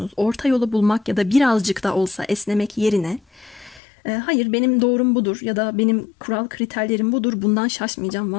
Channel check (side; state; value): right; drops out; at 3.8 s